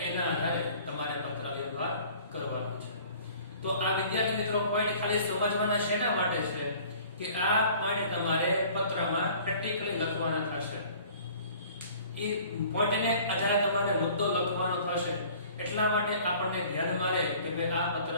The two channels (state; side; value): inverted; both; correlation -0.50